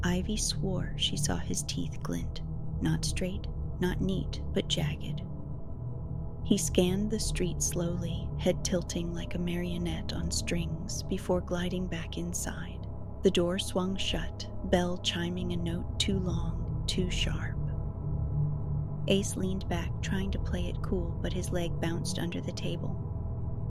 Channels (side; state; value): both; identical; correlation 1.00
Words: Ivy swore she saw his teeth glint. Not straight, not neat, but jagged. He scanned the street slowly, head tilting like a marionette on strings, before gliding back inside. The door swung shut, bell chiming a note too long, too sharp. Ace leaned back, trying to play it cool, but his leg bounced under the table.